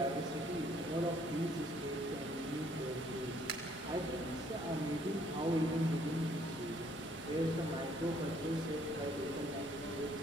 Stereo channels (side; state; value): both; normal; correlation 0.64